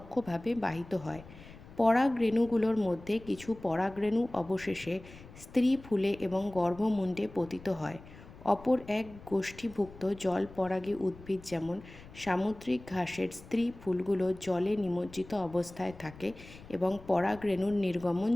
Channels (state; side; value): noise; left; rumble, 19 dB below the sound